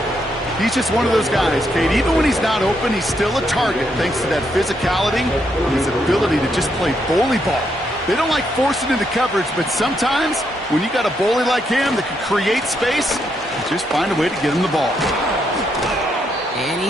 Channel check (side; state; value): both; normal; correlation 0.78